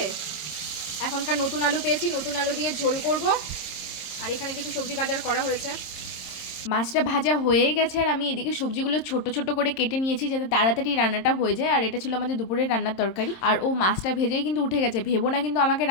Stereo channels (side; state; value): right; late; 27 ms